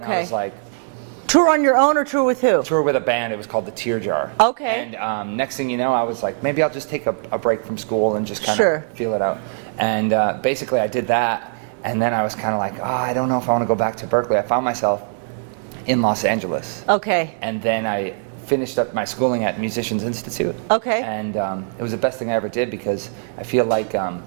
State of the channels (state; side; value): silent; left; 65 dB below the other